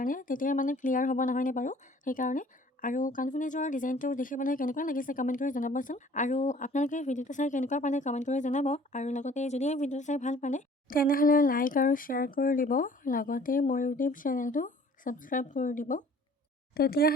তেতিয়া মানে ক্লিয়াৰ হ'ব নহয়নে বাৰু? সেইকাৰণে। আৰু কাণফুলিযোৰৰ ডিজাইনটো দেখিবলৈ কেনেকুৱা লাগিছে কমেণ্ট কৰি জনাবচোন। আৰু আপোনালোকে ভিডিঅ'টো চাই কেনেকুৱা পালে কমেণ্ট কৰি জনাব। আৰু লগতে যদি এই ভিডিঅ'টো চাই ভাল পালে তেনেহ'লে লাইক আৰু শ্বেয়াৰ কৰি দিব, লগতে মোৰ ইউটিউব চেনেলটো ছাবস্ক্ৰাইব কৰি দিব।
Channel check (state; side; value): normal; both; correlation 0.52